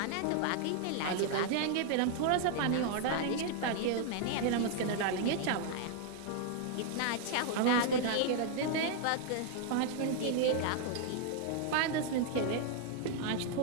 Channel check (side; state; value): both; different; correlation 0.00